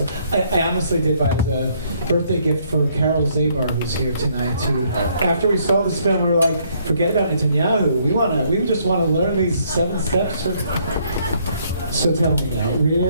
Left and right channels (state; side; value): inverted; both; correlation -0.68